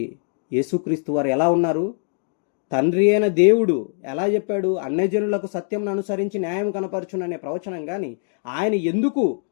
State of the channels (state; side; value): silent; right; digital silence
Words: యేసుక్రీస్తు వారు ఎలా ఉన్నారు? తండ్రి అయిన దేవుడు ఎలా చెప్పాడు? అన్యజనులకు సత్యం అనుసరించి న్యాయం కనపరచుననే ప్రవచనం. కానీ ఆయన ఎందుకు